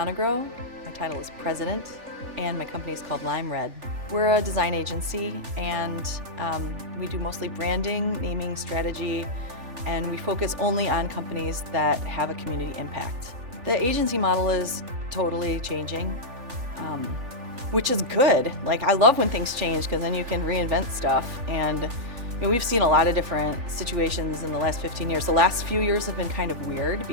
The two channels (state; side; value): late; left; 3.4 ms